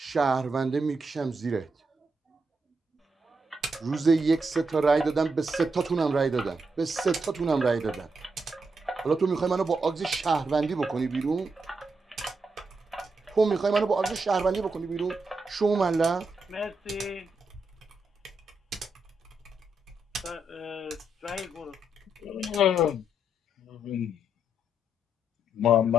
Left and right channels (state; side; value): normal; both; correlation 0.81